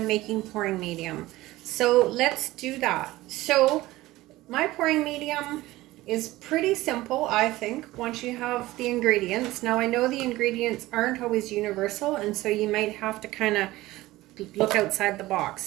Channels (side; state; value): left; quieter; 17.8 dB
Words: making pouring medium. So let's do that. So my pouring medium is pretty simple, I think, once you have the ingredients. Now I know the ingredients aren't always universal, and so you might have to kind of look outside the